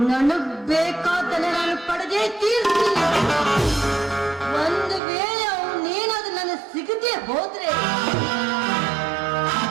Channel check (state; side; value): drops out; left; at 5.0 s